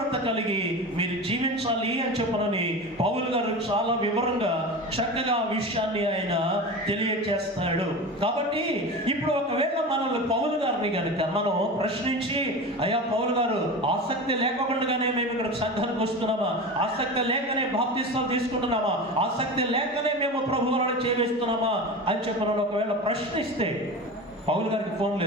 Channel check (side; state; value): both; normal; correlation 0.29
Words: కలిగి మీరు జీవించాలి అని చెప్పనని పౌలు గారు చాలా వివరంగా చక్కగా విషయాన్ని ఆయన తెలియజేస్తాడు. కాబట్టి ఇప్పుడు ఒకవేళ మనల్ని పౌలు గారిని కనుక మనం ప్రశ్నించి, అయ్యా పౌలు గారు ఆసక్తి లేకుండానే మేము ఇక్కడ సంఘానికి వస్తున్నామా, ఆసక్తి లేకనే బాప్తిస్తాలు తీసుకుంటున్నామా, ఆసక్తి లేకనే మేము ప్రభువులను చేవేస్తున్నామా అని చెప్పిన ఒకవేళ ప్రశ్నిస్తే, పౌలు గారికి ఫోన్